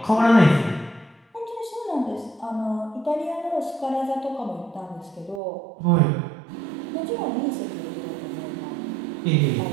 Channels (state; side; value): drops out; left; at 5.4 s